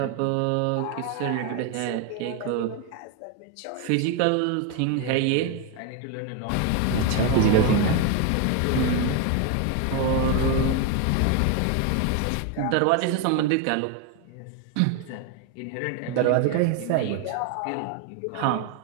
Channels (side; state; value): both; different; correlation 0.01